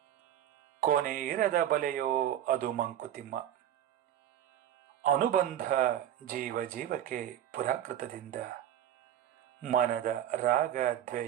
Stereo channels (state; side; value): quieter; left; 11.0 dB